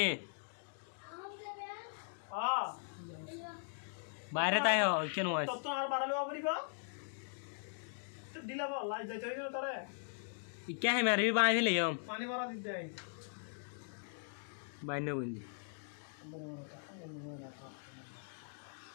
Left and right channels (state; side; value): silent; right; digital silence